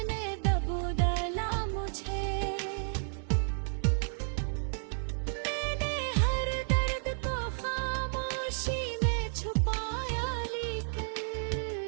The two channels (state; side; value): silent; left; 55 dB below the other